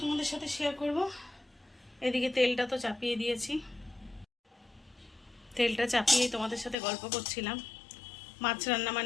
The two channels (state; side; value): drops out; right; at 6.8 s